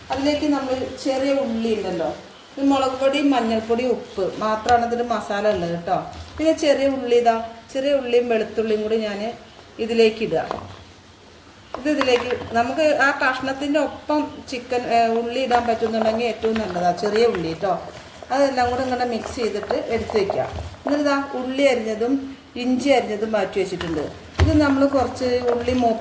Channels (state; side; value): identical; both; correlation 1.00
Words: അതിലേക്ക് നമ്മൾ ചെറിയ ഉള്ളി ഉണ്ടല്ലോ, മുളക് പൊടി, മഞ്ഞൾപ്പൊടി, ഉപ്പ് മാത്രമാണ് ഇതിൽ മസാല ഉള്ളത് കേട്ടോ. പിന്നെ ചെറിയ ഉള്ളിയും വെളുത്തുള്ളിയും കൂടി ഞാൻ ഇതിലേക്ക് ഇടുക. ഇതിലേക്ക് നമുക്ക് ആ കഷ്ണത്തിൻ്റെ ഒപ്പം ചിക്കൻ ഉള്ളി ഇടാൻ പറ്റുന്നുണ്ടെങ്കിൽ ഏറ്റവും നല്ലതാണ്, ചെറിയ ഉള്ളി കേട്ടോ. അതെല്ലാം കൂടെ ഇങ്ങനെ മിക്സ് ചെയ്തിട്ട് എടുത്ത് വയ്ക്കാം. എന്നിട്ട് ഉള്ളി അരിഞ്ഞതും ഇഞ്ചി അരിഞ്ഞതും മാറ്റി വെച്ചിട്ടുണ്ട്. ഇത് നമ്മൾ കുറച്ച് ഉള്ളി